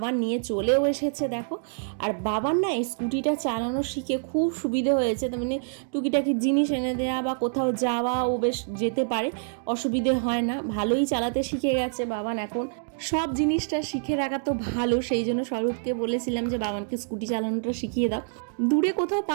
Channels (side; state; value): left; silent; digital silence